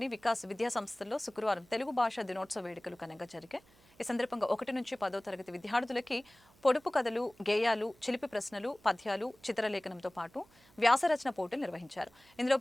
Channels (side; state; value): right; noise; hum, 29 dB below the sound